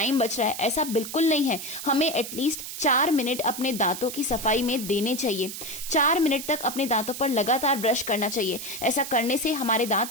बच रहा है, ऐसा बिल्कुल नहीं है। हमें एटलीस्ट 4 मिनट अपने दांतों की सफाई में देने चाहिए। 4 मिनट तक अपने दांतों पर लगातार ब्रश करना चाहिए। ऐसा करने से हमारे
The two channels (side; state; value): right; noise; hiss, 8 dB below the sound